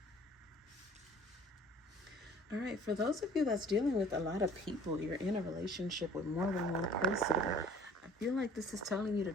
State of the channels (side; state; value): both; normal; correlation 0.51